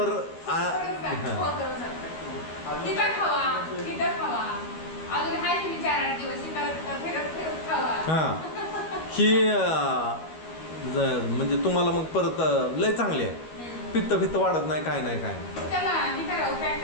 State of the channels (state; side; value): late; right; 13 ms